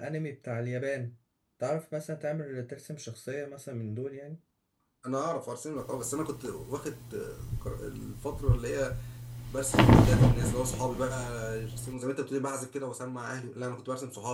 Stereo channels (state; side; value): identical; both; correlation 1.00